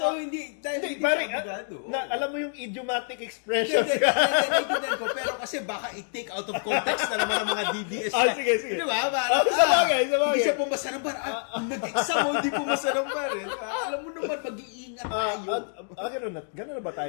dahil hindi pare, siya abogado. alam mo yung idiomatic Hindi, expressions. naiintindihan ko. Pero kasi baka i-take out of context na naman ng mga DDS. Sige. Di ba? Parang, Sa bagay. Hindi siya pumasa ng bar. Nag-exam mo, hindi pumasa ng bar. Alam mo naman, mag-iingat tayo. Ganun na ba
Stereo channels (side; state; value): right; silent; digital silence